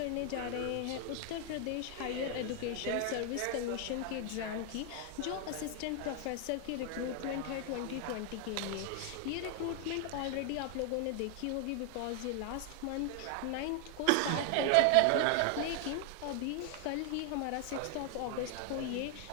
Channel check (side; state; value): both; different; correlation 0.00